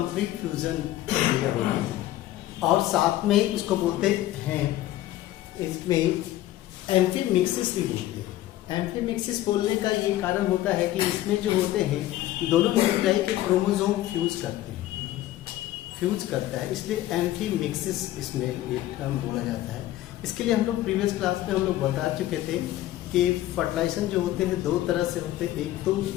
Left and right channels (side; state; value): right; quieter; 14.6 dB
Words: फ्यूजन प्रक्रिया होती है। और साथ में इसको बोलते हैं, इसमें एम्फीमिक्सिस भी बोलते हैं। एम्फीमिक्सिस बोलने का ये कारण होता है कि इसमें जो होते हैं दोनों न्यूक्लियाई के क्रोमोसोम फ्यूज करता है, इसलिए एम्फीमिक्सिस इसमें ये टर्म बोला जाता है। इसके लिए हम लोग प्रीवियस क्लास में हम लोग बता चुके थे कि फर्टिलाइजेशन जो होते हैं दो तरह से होते हैं। एक तो